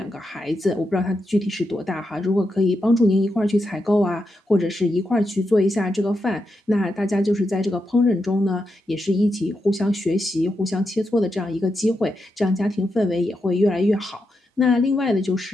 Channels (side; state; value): both; normal; correlation 0.85